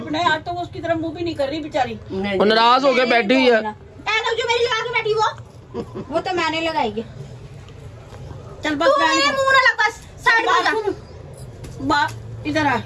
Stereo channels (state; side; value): identical; both; correlation 1.00